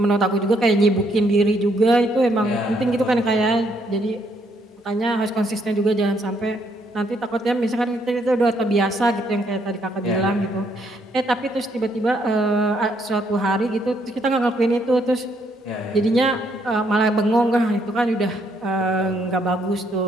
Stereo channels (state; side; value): normal; both; correlation 0.71